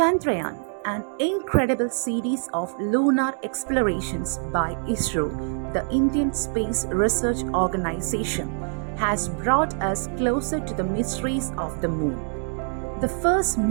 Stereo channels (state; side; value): silent; left; 62 dB below the other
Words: an incredible series of lunar explorations by ISRO, the Indian Space Research Organization, has brought us closer to the mysteries of the moon. The first